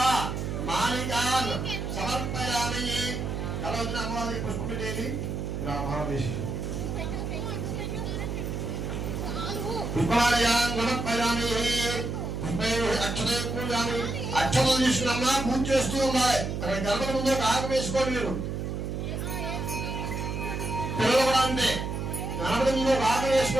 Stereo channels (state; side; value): noise; right; hum, 3 dB below the sound